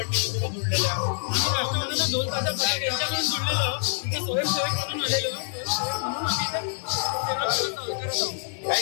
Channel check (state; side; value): silent; right; digital silence